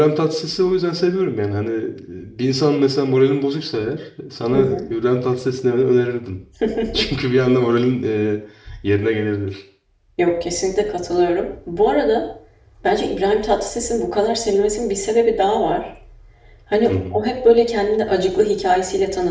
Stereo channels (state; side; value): identical; both; correlation 1.00